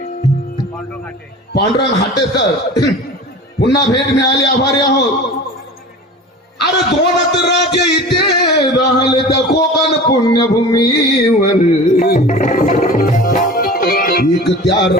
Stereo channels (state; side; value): normal; both; correlation 0.37